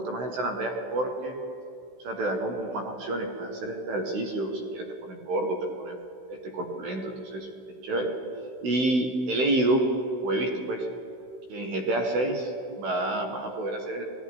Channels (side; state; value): left; late; 16 ms